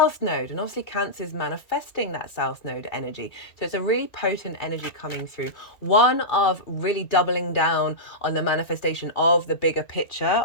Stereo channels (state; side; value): late; right; 2.3 ms